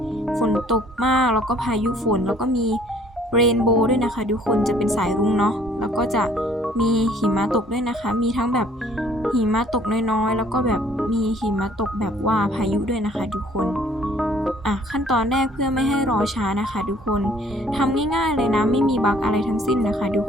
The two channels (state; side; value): normal; both; correlation 0.58